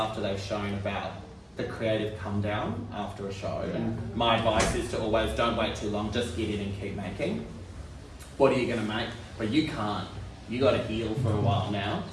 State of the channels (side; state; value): both; identical; correlation 1.00